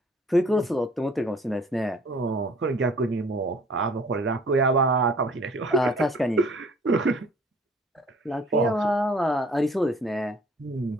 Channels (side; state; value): both; normal; correlation 0.54